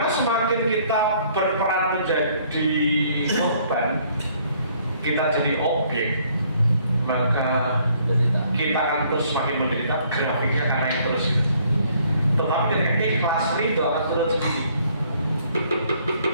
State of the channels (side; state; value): both; inverted; correlation -0.63